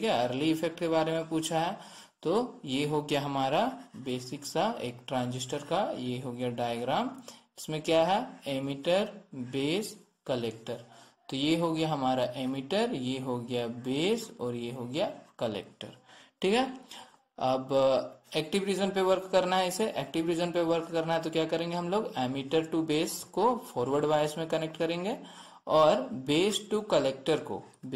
है, अर्ली इफेक्ट के बारे में पूछा है। तो ये हो गया हमारा बेसिक सा एक ट्रांजिस्टर का, ये हो गया डायग्राम, इसमें क्या है, एमिटर बेस कलेक्टर। तो ये हो गया हमारा एमिटर, ये हो गया बेस और ये हो गया कलेक्टर, ठीक है। अब एक्टिव रीजन पे वर्क करना है, इसे एक्टिव रीजन पे वर्क करना है, तो क्या करेंगे हम लोग, एमिटर टू बेस को फॉरवर्ड बायस में कनेक्ट करेंगे और बेस टू कलेक्टर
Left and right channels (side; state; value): both; identical; correlation 1.00